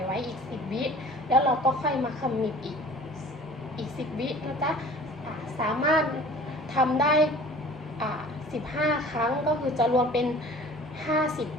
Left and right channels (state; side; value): normal; both; correlation 0.46